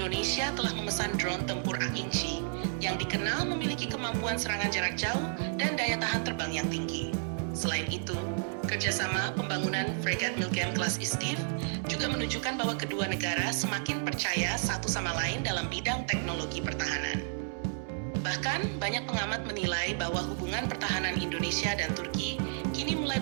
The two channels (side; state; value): left; silent; digital silence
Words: telah memesan drone tempur Akinci yang dikenal memiliki kemampuan serangan jarak jauh dan daya tahan terbang yang tinggi. Selain itu, kerjasama pembangunan fregat Milgem kelas Istif juga menunjukkan bahwa kedua negara semakin percaya satu sama lain dalam bidang teknologi pertahanan. Bahkan, banyak pengamat menilai bahwa hubungan pertahanan Indonesia dan Turki kini mulai